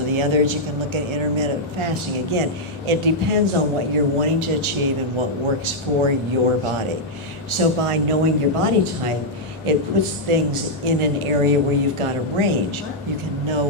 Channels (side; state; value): both; normal; correlation -0.04